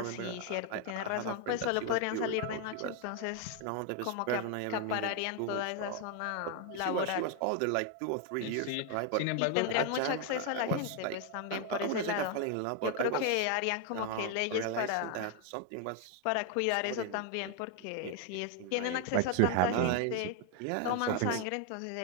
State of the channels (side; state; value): both; different; correlation 0.01